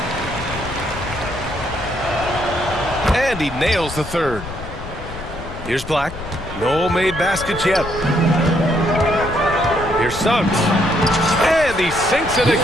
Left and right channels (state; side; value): noise; left; rumble, 12 dB below the sound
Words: And he nails the third. Here's Black. No made baskets yet. Here's Suggs. And he sinks it